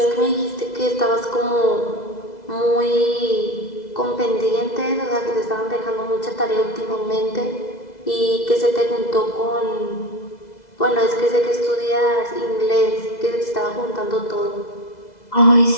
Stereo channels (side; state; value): right; late; 2.0 ms